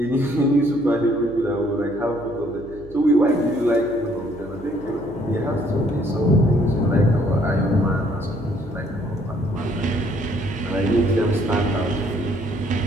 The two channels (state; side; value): noise; right; hum, 19 dB below the sound